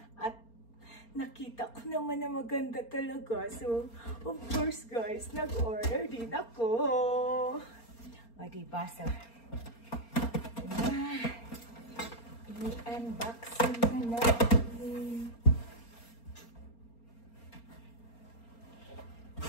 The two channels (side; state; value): right; late; 4.3 ms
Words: at nakita ko naman na maganda talaga. So, of course guys, nag-order din ako. O, diba? So, i-unboxing na natin.